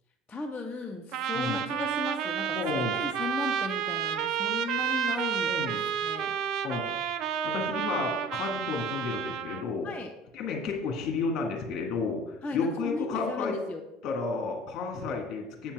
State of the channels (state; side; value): normal; both; correlation 0.44